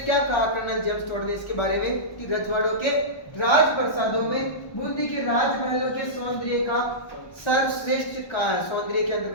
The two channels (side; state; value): right; late; 1.1 ms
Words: कहा कर्नल जेम्स टोड ने इसके बारे में कि रजवाड़ों के राज प्रसादों में बूंदी के राजमहलों के सौंदर्य का सर्वश्रेष्ठ कहा है। सौंदर्य के